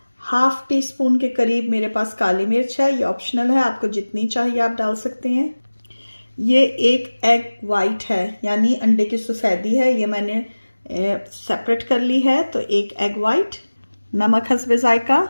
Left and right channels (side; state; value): both; inverted; correlation -1.00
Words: हाफ टी स्पून के करीब मेरे पास काली मिर्च है, ये ऑप्शनल है, आपको जितनी चाहिए आप डाल सकते हैं। ये एक एग वाइट है, यानी अंडे की सफ़ेदी है, ये मैंने सेपरेट कर ली है। तो एक एग वाइट, नमक हस्बे जायका।